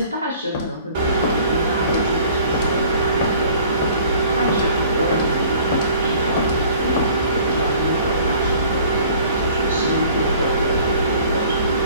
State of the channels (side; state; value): both; inverted; correlation -0.52